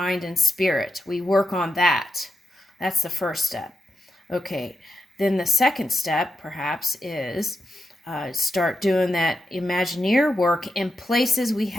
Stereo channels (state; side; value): normal; both; correlation 0.87